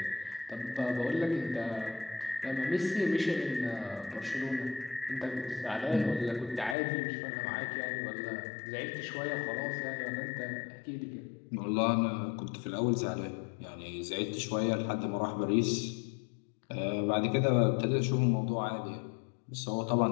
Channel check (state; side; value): drops out; right; at 6.8 s